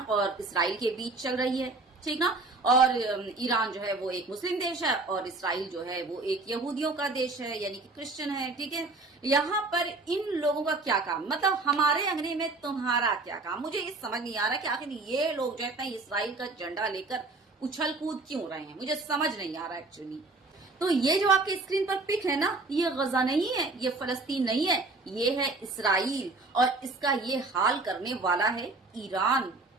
और इसराइल के बीच चल रही है, ठीक ना। और ईरान जो है वो एक मुस्लिम देश है और इसराइल जो है वो एक यहूदियों का देश है, यानी कि क्रिश्चियन है, ठीक है। यहाँ पर इन लोगों का क्या काम, मतलब हमारे अंगने में तुम्हारा क्या काम। मुझे ये समझ नहीं आ रहा कि आखिर ये लोग जो है इसराइल का झंडा लेकर उछल कूद क्यों रहे हैं, मुझे समझ नहीं आ रहा एक्चुअली। तो ये जो आपके स्क्रीन पर पिक है ना, ये गजा नहीं है, ये फलस्तीन नहीं है, ये है इसराइल और इसका ये हाल करने वाला है ईरान।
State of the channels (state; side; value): quieter; left; 3.4 dB